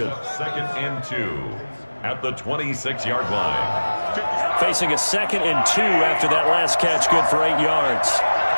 2nd and 2 at the 26-yard line. Facing a 2nd and 2 after that last catch, good for 8 yards.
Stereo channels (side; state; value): both; inverted; correlation -1.00